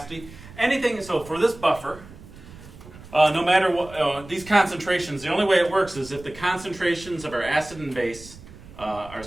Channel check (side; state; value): right; noise; rumble, 18 dB below the sound